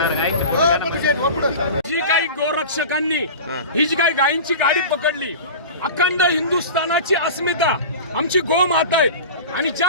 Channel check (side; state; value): both; inverted; correlation -0.33